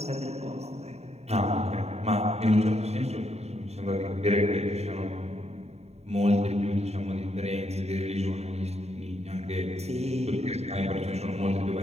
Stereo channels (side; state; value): left; late; 0.31 ms